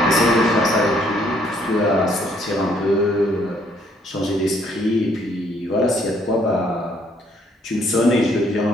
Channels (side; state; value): both; normal; correlation 0.66